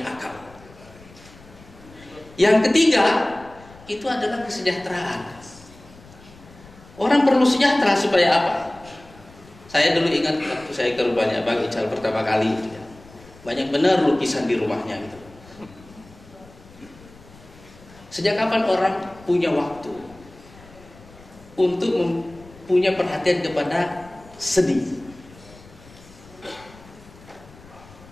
akal. Yang ketiga itu adalah kesejahteraan. Orang perlu sejahtera supaya apa? Saya dulu ingat waktu saya ke rumahnya Bang Ical pertama kali, banyak benar lukisan di rumahnya gitu. Sejak kapan orang punya waktu untuk punya perhatian kepada seni?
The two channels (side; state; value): left; noise; rumble, 22 dB below the sound